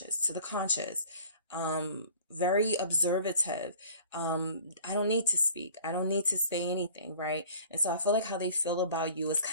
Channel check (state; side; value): inverted; both; correlation -0.48